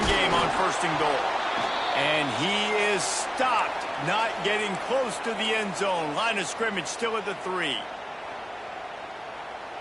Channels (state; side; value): identical; both; correlation 1.00